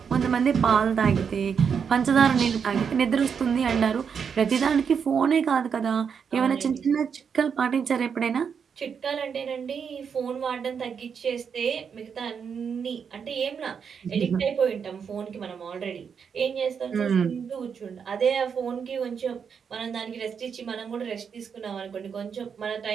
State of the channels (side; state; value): left; quieter; 6.7 dB